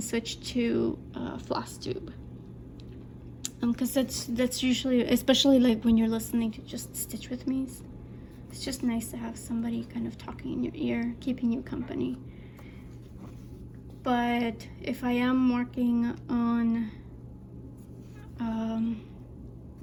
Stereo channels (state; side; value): identical; both; correlation 1.00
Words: switch to FlossTube. Because that's usually, especially like when you're listening to just stitch with me, it's just nice to have somebody kind of talking in your ear, keeping you company. But if I am working on